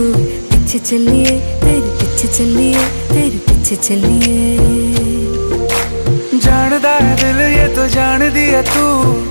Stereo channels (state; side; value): inverted; both; correlation -1.00